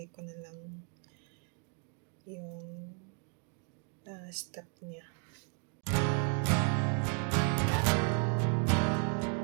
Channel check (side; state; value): left; quieter; 39.5 dB